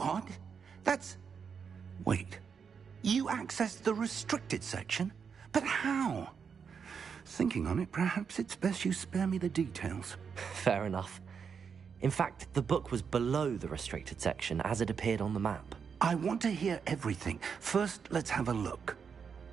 That's... Wait. You accessed the restricted section? But how? Thinking on it, perhaps it's best you spare me the details. Fair enough. In fact, the book was below the restricted section as it appeared on the map. I want to hear everything. First, let's have a look.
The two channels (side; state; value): left; quieter; 6.4 dB